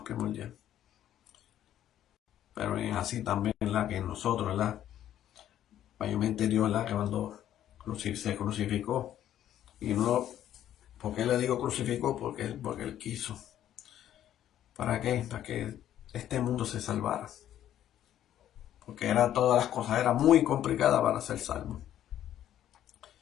primordial. Pero es así también, ¿verdad?, que nosotros, ¿verdad? Mayormente Dios, ¿verdad?, que cuando se crucificó. Y no, ¿por qué le digo crucificó? Porque él quiso. ¿Para qué? Para que este mundo se salvara. Porque todas las cosas, era muy complicada para ser salvo.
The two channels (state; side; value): quieter; right; 11.5 dB